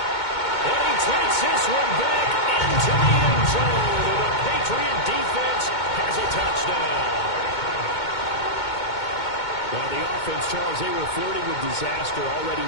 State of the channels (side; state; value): right; late; 2.2 ms